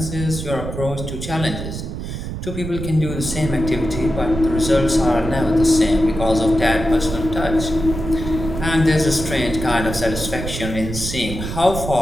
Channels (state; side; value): noise; right; rumble, 6 dB below the sound